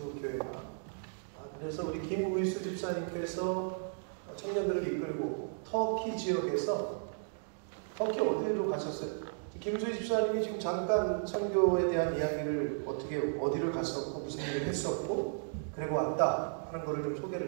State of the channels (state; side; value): silent; left; digital silence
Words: 교회가. 그래서 우리 김우일수 집사님께서 청년들을 이끌고 터키 지역에서 터키 어디로 가셨어요? 김우일수 집사님이 지금 잠깐 선교에 대한 이야기를 어디를 갔었고 무슨 일을 했었고 그리고 왔다 하는 것을 좀